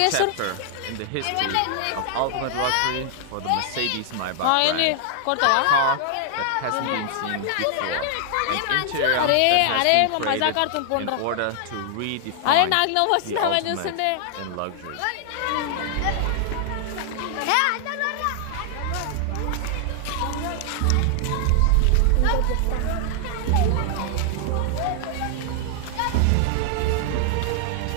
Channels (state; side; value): different; both; correlation 0.00